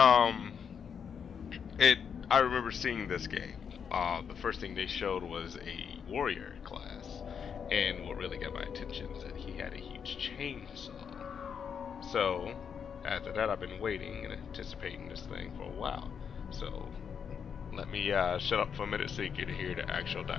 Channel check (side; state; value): right; quieter; 7.1 dB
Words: I remember seeing this game. The first thing they showed was a warrior class, and what really got my attention is that he had a huge chainsaw. So, after that, I've been waiting and anticipating this thing for a while. So, let me shut up for a minute so you can hear the actual